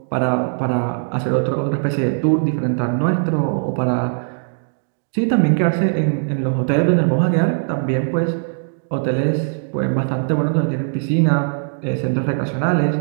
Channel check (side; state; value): left; silent; digital silence